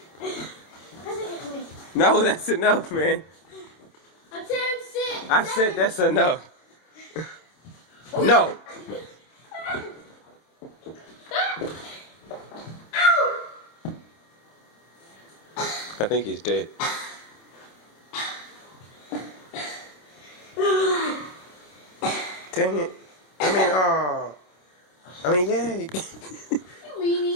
No, that's enough, man. Attempt 6. I said that's enough. No. I think he's dead. Dang it. Yay. You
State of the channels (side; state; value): right; late; 27 ms